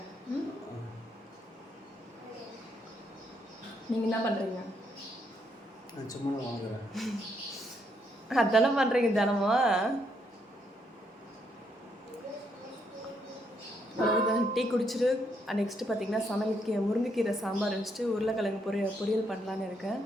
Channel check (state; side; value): normal; both; correlation 0.75